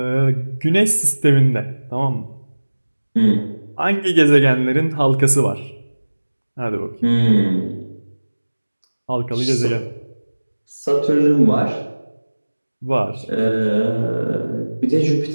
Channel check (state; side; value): inverted; both; correlation -1.00